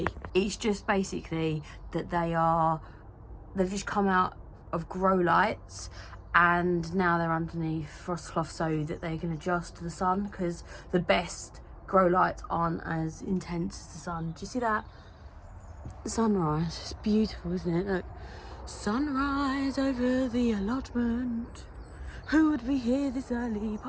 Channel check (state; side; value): identical; both; correlation 1.00